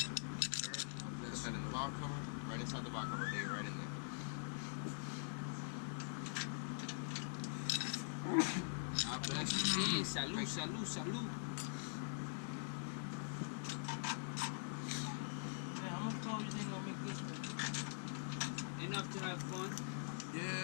God bless Put that in the box cover, right inside the box cover, there, right in there. God bless you. Yeah, salud, salud, salud. Man, how much power you think I'll make this one? Enough to have fun.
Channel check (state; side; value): silent; right; digital silence